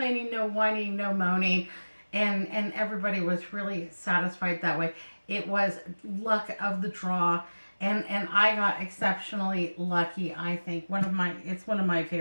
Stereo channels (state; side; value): inverted; both; correlation -1.00